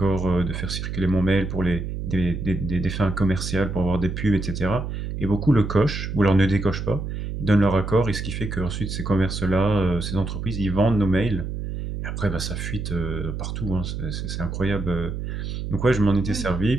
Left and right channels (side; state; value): right; noise; hum, 5 dB below the sound